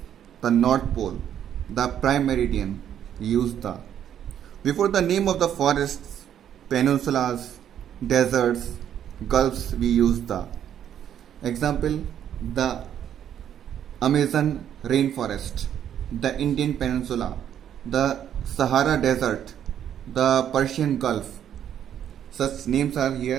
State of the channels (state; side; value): quieter; left; 9.9 dB